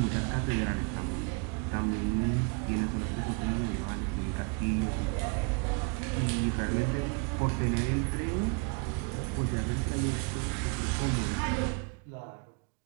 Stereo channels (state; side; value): quieter; left; 31.9 dB